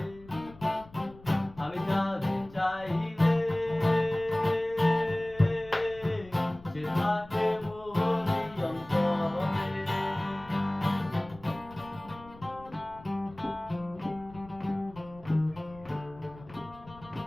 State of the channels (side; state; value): left; noise; rumble, 21 dB below the sound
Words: আমি তারে চাই রে, সে থাকে মোরই অন্তরে।